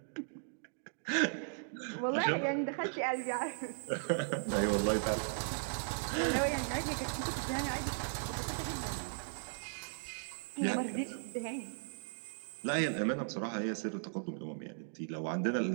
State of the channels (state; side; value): silent; left; digital silence